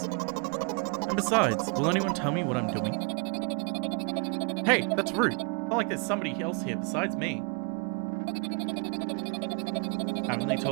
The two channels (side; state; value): left; quieter; 34.4 dB